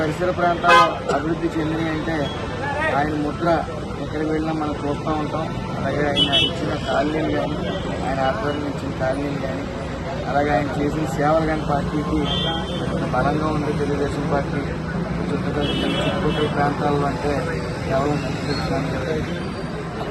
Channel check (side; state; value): both; identical; correlation 1.00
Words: ప్రాంతాల్లో అభివృద్ధి చెందినవి అంటే ఆయన ముద్ర ఎక్కడికి వెళ్ళినా మనం చూస్తూ ఉంటాం. అలాగే ఆయన ఇచ్చిన కాలనీలు కానీ ఆయన ఆధ్వర్యం ఇచ్చిన కాలనీలు కానీ అలాగే ఆయన చేసిన సేవలు కానీ పార్టీకి బలంగా ఉంది. తెలుగుదేశం పార్టీ చుట్టుపక్కల ప్రాంతాల్లో అంటే కేవలం తెలుసుకోవడానికి